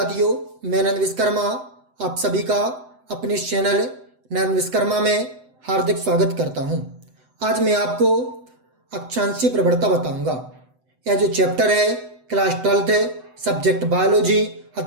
मैं नंद विश्वकर्मा आप सभी का अपने इस चैनल नंद विश्वकर्मा में हार्दिक स्वागत करता हूं। आज मैं आपको अक्षांशीय प्रवणता बताऊंगा। यह जो चैप्टर है क्लास 12th है, सब्जेक्ट बायोलॉजी,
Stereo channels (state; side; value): late; left; 7.9 ms